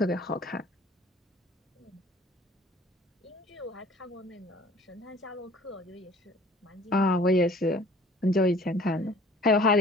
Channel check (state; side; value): normal; both; correlation 0.51